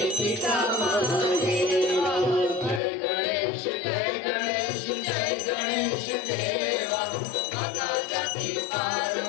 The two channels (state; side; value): drops out; right; at 2.8 s